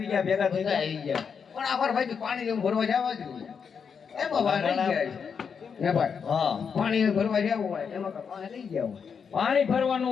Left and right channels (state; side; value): quieter; right; 6.4 dB